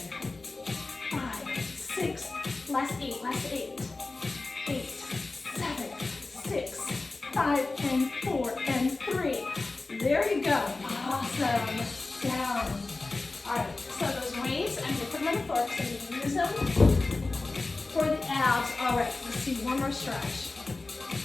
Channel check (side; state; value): right; quieter; 3.4 dB